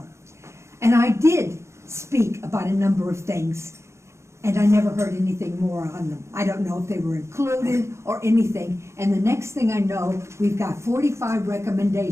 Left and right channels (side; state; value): left; late; 0.13 ms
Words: And I did speak about a number of things, and I never heard anything more on them. I don't know if they were included or anything. And the next thing I know, we've got 45